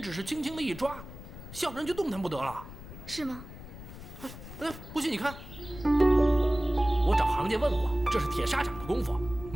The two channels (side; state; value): left; noise; rumble, 14 dB below the sound